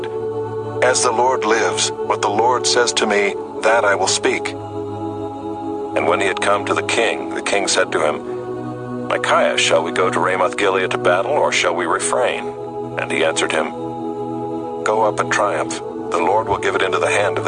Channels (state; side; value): identical; both; correlation 1.00